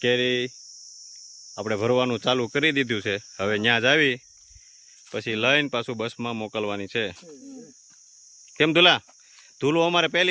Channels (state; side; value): identical; both; correlation 1.00